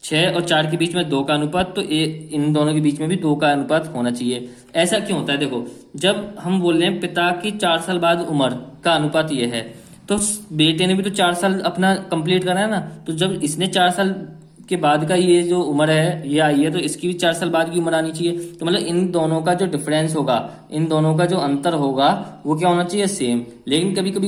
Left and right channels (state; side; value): identical; both; correlation 1.00